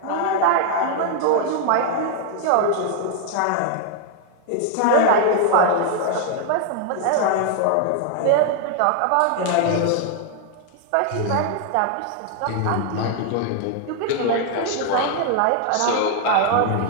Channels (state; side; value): different; both; correlation 0.00